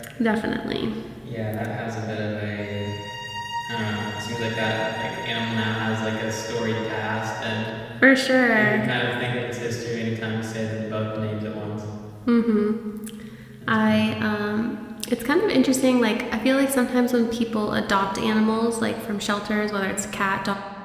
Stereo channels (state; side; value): identical; both; correlation 1.00